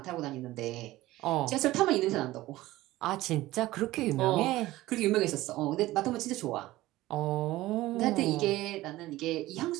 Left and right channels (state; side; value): quieter; left; 17.1 dB